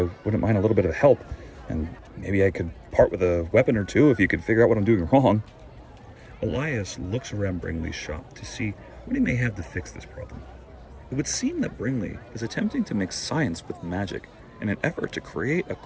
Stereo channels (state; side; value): identical; both; correlation 1.00